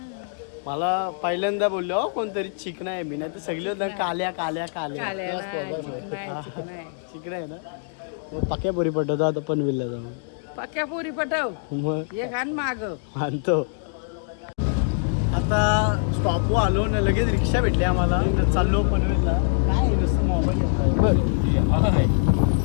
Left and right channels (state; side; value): silent; right; digital silence